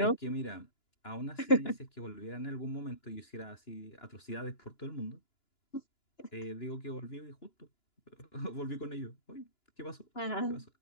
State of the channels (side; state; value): right; late; 2.9 ms